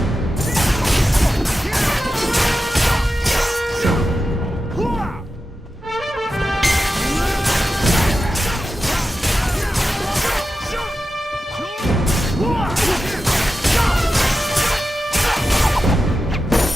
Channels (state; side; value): normal; both; correlation 0.92